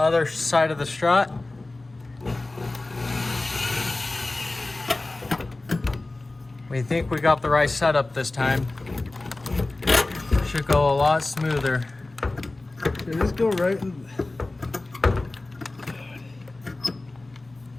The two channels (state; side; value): quieter; right; 3.0 dB